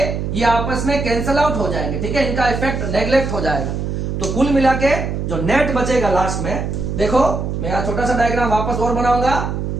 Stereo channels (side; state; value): right; noise; hum, 3 dB below the sound